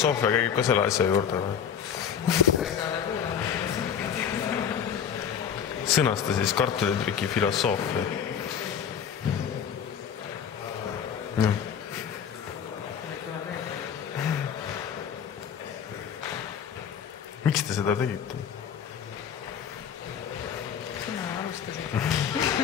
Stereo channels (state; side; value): quieter; right; 8.0 dB